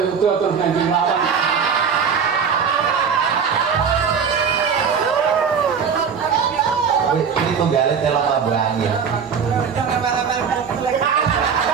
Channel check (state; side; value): quieter; left; 6.6 dB